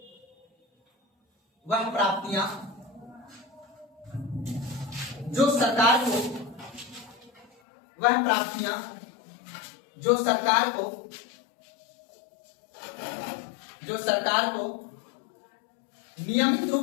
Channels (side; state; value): right; drops out; at 7.5 s